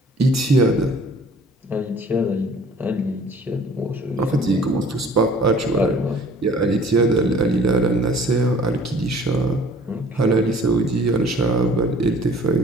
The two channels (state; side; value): normal; both; correlation 0.51